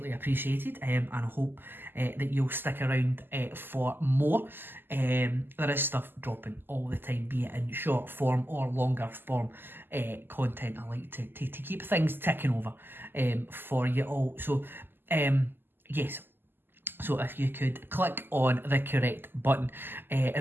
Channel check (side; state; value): left; late; 0.096 ms